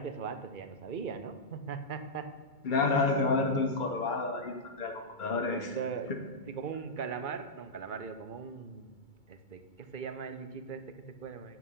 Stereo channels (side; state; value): right; late; 2.2 ms